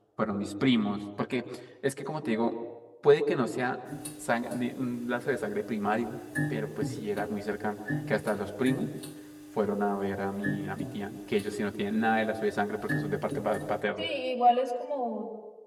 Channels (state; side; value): identical; both; correlation 1.00